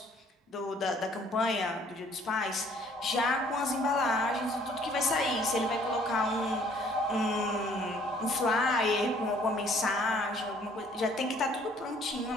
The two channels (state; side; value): normal; both; correlation 0.59